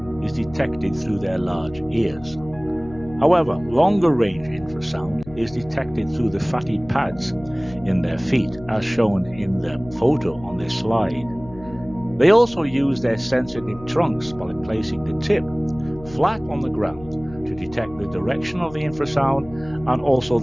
is detected through their large ears. However, longer-range infrasound is detected through the fatty pads in their feet, as shown in the photo on this slide. They also use their sensitive trunks by placing the tip flat on the ground to detect the direction of the infrasound and also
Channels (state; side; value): noise; left; hum, 18 dB below the sound